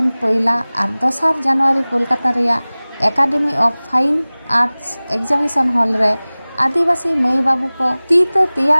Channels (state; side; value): inverted; both; correlation -0.99